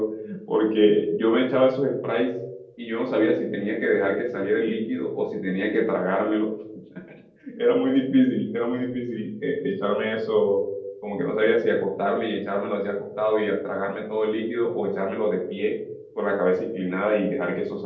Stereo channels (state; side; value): identical; both; correlation 1.00